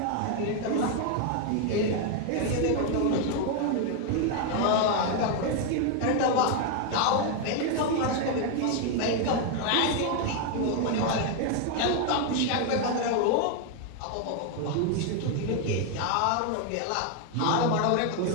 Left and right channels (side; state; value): both; different; correlation 0.01